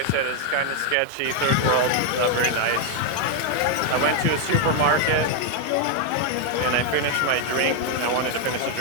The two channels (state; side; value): different; both; correlation 0.00